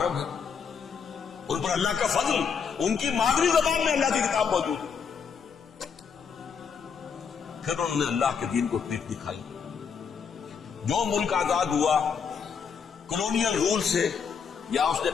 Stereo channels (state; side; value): quieter; right; 6.4 dB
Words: ہے. ان پر اللہ کا فضل، ان کی مادری زبان میں اللہ کی کتاب موجود ہے. پھر انہوں نے اللہ کے دین کو پیٹ دکھائی. جو ملک آزاد ہوا کولونیل رول سے، یا اس نے